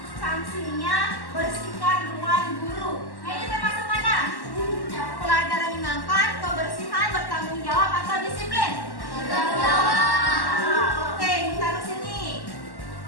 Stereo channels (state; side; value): late; right; 1.1 ms